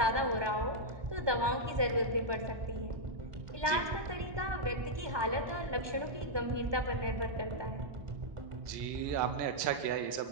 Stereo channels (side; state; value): left; late; 1.2 ms